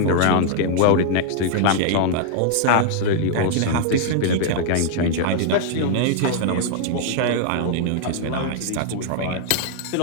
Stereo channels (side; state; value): both; different; correlation 0.00